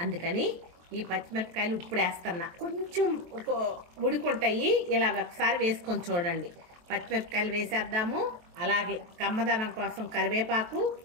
అందుకని ఈ పచ్చిమిరపకాయలు ఇప్పుడు వేస్తున్నా. కొంచెం ఉడుకుంటాయి. ఇలా ఒకసారి వేసుకొని చూడండి. పచ్చిమిరపకాయలు వేసేద్దాము. అలాగే కమ్మదనం కోసం కరివేపాకు.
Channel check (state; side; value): late; left; 23 ms